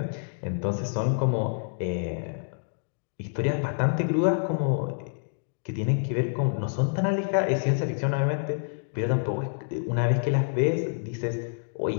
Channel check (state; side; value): silent; right; digital silence